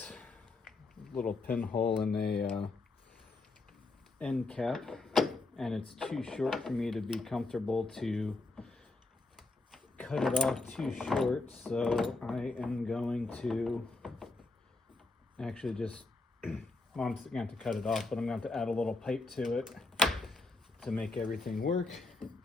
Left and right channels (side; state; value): right; quieter; 3.3 dB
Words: Little pinhole in a end cap, and it's too short for me to be comfortable to cut it off too short, so I am going to actually just well, I'm going to have to cut it off, but I'm going to have to add a little pipe to it to make everything work.